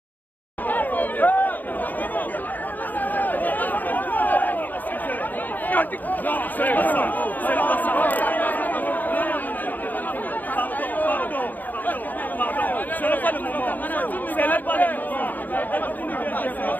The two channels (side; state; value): right; late; 0.084 ms